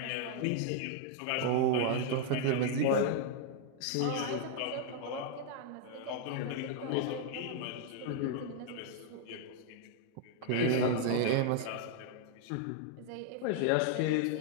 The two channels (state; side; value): different; both; correlation 0.00